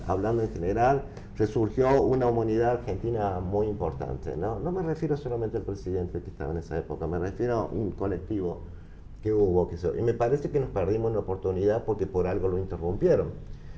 hablando en general, resurgió una humanidad argentina muy importante, ¿no? No me refiero solamente al presidente que estaba en esa época, me refiero a un colectivo que hubo. Y me parece que nos perdimos una oportunidad porque por algo lo interrumpieron,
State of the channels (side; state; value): both; identical; correlation 1.00